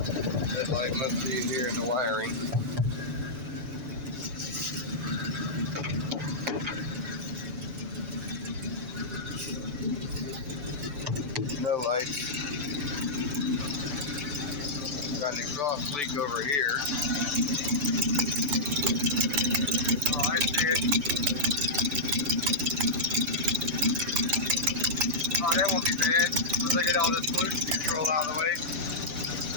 No lights. Got an exhaust leak over here. Oh, I see it. Oh, that won't be bad. Once I get all this pollution control out of the way.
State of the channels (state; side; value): late; left; 6.9 ms